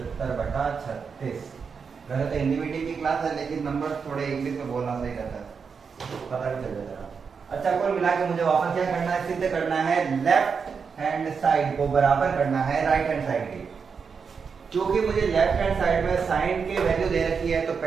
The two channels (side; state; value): left; quieter; 5.8 dB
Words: वैसे तो हिंदी मीडियम की क्लास है, लेकिन नंबर थोड़े इंग्लिश में बोलना सही रहता है, पता भी चल जाता है। अच्छा, कुल मिला के मुझे वापस क्या करना है, सिद्ध करना है लेफ्ट हैंड साइड को बराबर करना है राइट हैंड साइड के। क्योंकि मुझे लेफ्ट हैंड साइड में साइन की वैल्यू दे रखी है, तो